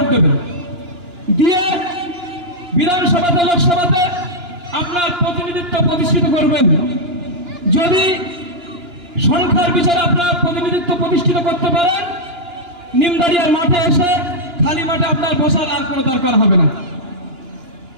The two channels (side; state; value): left; late; 2.9 ms